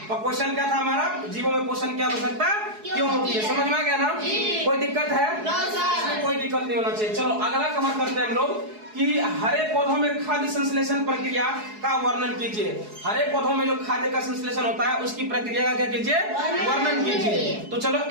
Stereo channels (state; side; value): late; left; 4.7 ms